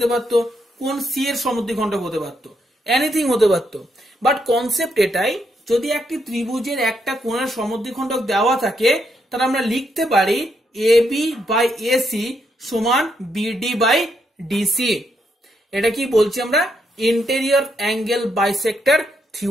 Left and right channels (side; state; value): both; normal; correlation 0.78